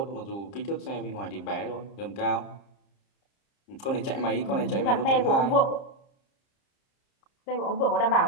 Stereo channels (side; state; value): right; late; 30 ms